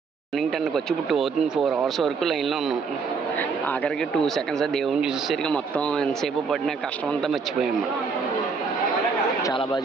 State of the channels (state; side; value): quieter; left; 5.1 dB